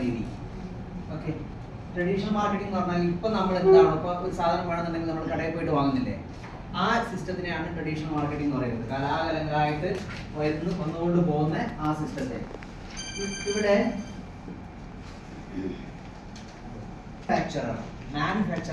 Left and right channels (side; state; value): both; identical; correlation 1.00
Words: രീതി. ഓക്കെ, ട്രഡീഷണൽ മാർക്കറ്റിംഗ് എന്ന് പറഞ്ഞാൽ ഇപ്പം നമ്മൾ എന്താണ്, ഇപ്പോൾ ഒരു സാധനം വേണമെന്നുണ്ടെങ്കിൽ നമ്മൾ കടയിൽ പോയിട്ട് വാങ്ങുന്നില്ലേ, ആ സിസ്റ്റത്തിനെയാണ് ട്രഡീഷണൽ മാർക്കറ്റിംഗ് എന്ന് പറയുന്നത്. കലാകാലങ്ങളായിട്ട് വന്നുകൊണ്ട് പോകുന്ന ആ സിസ്റ്റത്തെ. ഇവിടെ